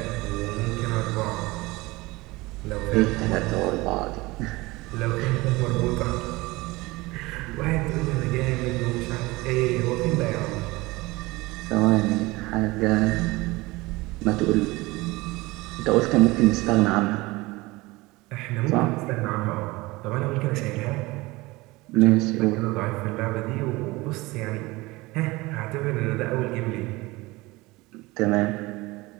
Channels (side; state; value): left; quieter; 21.7 dB